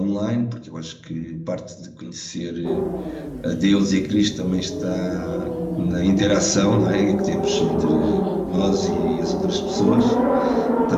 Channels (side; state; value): both; identical; correlation 1.00